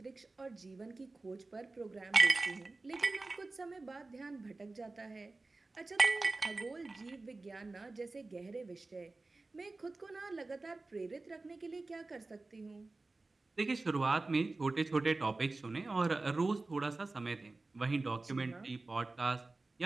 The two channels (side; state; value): left; quieter; 3.4 dB